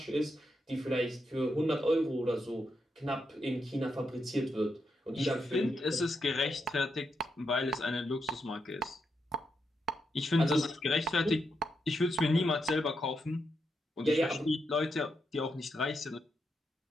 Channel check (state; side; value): normal; both; correlation 0.82